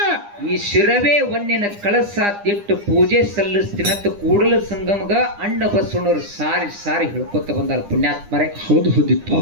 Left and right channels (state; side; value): late; left; 9.9 ms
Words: ಈ ಶಿರವೇ ಒನ್ನಿನ ಕಳಸ ತಿಟ್ಟು ಪೂಜೆ ಸಲ್ಲಿಸ್ತೀನಂತ ಕೂಡಲ ಸಂಗಮಗ ಅಣ್ಣ ಬಸವಣ್ಣವ್ರು ಸಾರಿ ಸಾರಿ ಹೇಳ್ಕೊತ ಬಂದಾರ ಪುಣ್ಯಾತ್ಮರೇ. ಹೌದು ಹೌದಿಪ್ಪ.